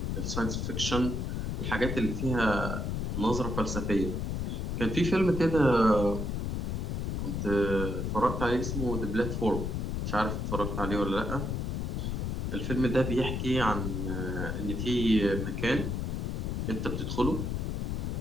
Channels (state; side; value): noise; left; rumble, 1 dB below the sound